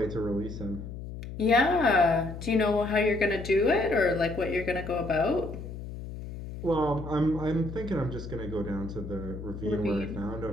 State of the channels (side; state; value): left; noise; hum, 10 dB below the sound